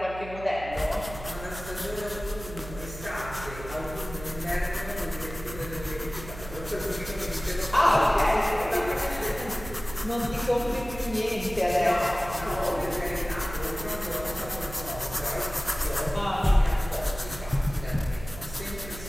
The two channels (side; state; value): right; noise; hum, 13 dB below the sound